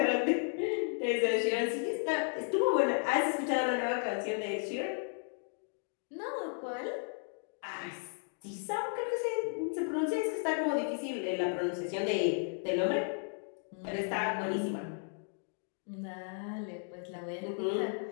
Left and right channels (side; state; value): right; silent; 55 dB below the other